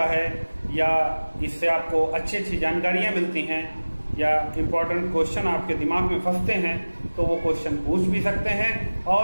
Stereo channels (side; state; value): both; inverted; correlation -1.00